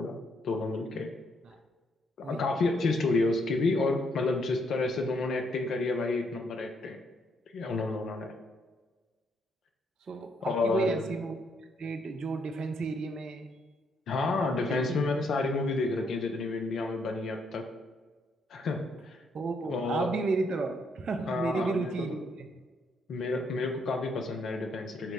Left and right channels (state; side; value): normal; both; correlation 0.73